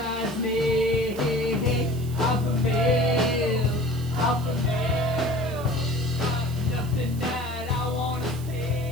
me? Off a bill, off a bill. Nothing that I wanna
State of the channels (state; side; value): noise; right; hiss, 18 dB below the sound